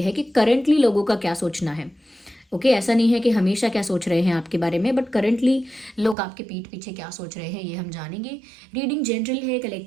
है कि करंटली लोगों का क्या सोचना है। ओके ऐसा नहीं है कि हमेशा क्या सोच रहे हैं आपके बारे में, बट करंटली लोग आपके पीठ पीछे क्या सोच रहे हैं ये हम जानेंगे। रीडिंग जनरल है,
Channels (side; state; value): left; drops out; at 6.2 s